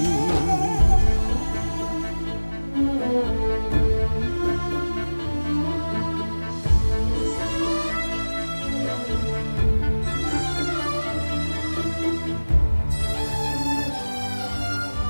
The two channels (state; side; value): inverted; both; correlation -1.00